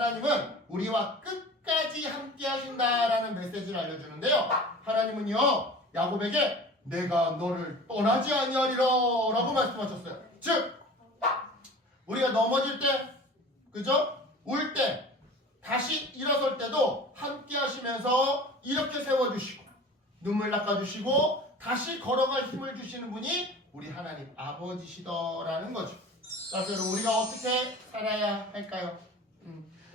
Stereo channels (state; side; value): normal; both; correlation 0.40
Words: 우리와 끝까지 함께 하신다라는 메시지를 알려주는데요. 하나님은요, 야곱에게 내가 너를 떠나지 아니하리라 라고 말씀하셨어요. 즉, 우리가 넘어질 때, 그죠? 울 때, 다시 일어설 때도 함께 하시면서 이렇게 세워주시고, 눈물 닦아주시고, 다시 걸어갈 힘을 주시는 분이 우리 하나님 아버지시더라는 거죠. 그래서 여러분, 우리가 어떻게 살아야 할까요?